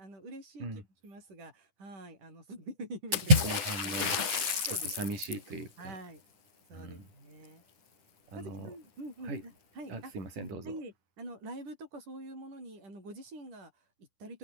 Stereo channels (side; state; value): left; late; 10 ms